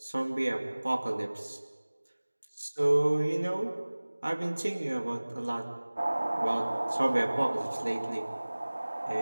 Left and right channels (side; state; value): both; inverted; correlation -1.00